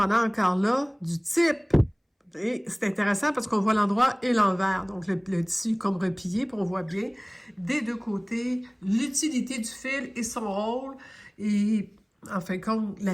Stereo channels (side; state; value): both; identical; correlation 1.00